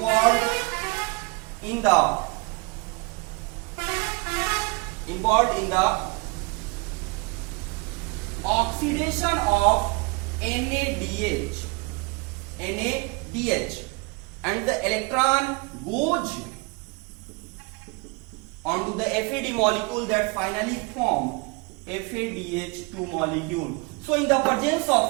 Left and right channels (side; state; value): left; quieter; 29.0 dB